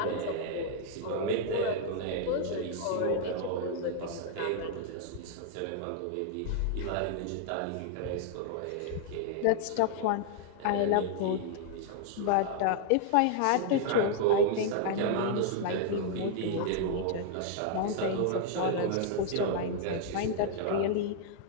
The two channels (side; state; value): both; different; correlation 0.00